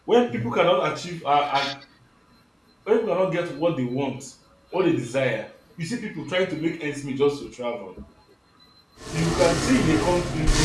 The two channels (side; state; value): both; identical; correlation 1.00